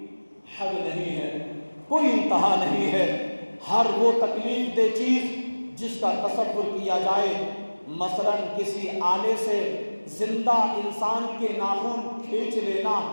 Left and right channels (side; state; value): both; inverted; correlation -1.00